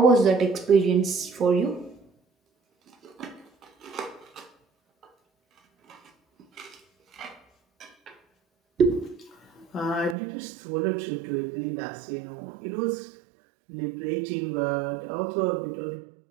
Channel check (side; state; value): left; drops out; at 10.2 s